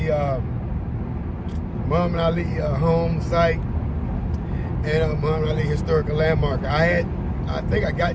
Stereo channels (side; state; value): both; identical; correlation 1.00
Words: Muhammad Ali home site and Muhammad Ali historical landmark. I think I